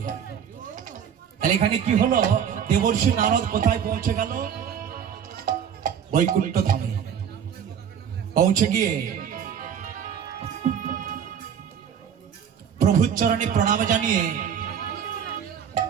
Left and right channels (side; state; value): left; quieter; 8.2 dB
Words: তাহলে এখানে কি হলো দেবর্ষি নারদ কোথায় পৌঁছে গেল বৈকুণ্ঠ ধামে পৌঁছে গিয়ে প্রভুর চরণে প্রণাম জানিয়ে